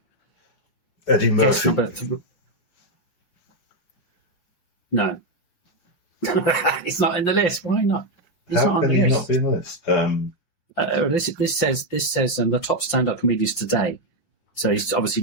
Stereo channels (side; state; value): right; late; 4.8 ms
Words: Eddie Guess Murphy. number 3. No. It's not in the list. Why not? It's How not on can the he list. not be in the list? This says the top stand-up comedians today. So he's